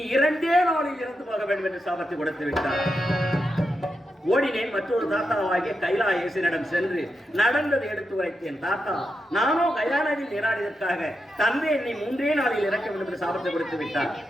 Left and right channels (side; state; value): both; normal; correlation 0.86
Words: 2 நாளில் இறந்து போக வேண்டும் என்று சாபத்தை கொடுத்து விட்டார். ஓடினேன். மற்றொரு தாத்தாவாகிய கைலாயேசனிடம் சென்று நடந்ததை எடுத்து உரைத்தேன். தாத்தா, நானோ கயா நதியில் நீராடியதற்காக தந்தை என்னை 3 நாளில் இறக்க வேண்டும் என்று சாபத்தை கொடுத்து விட்டார்.